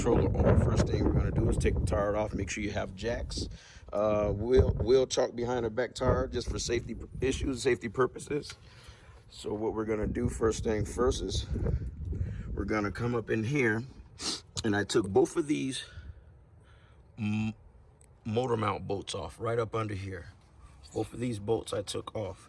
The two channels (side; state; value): both; identical; correlation 1.00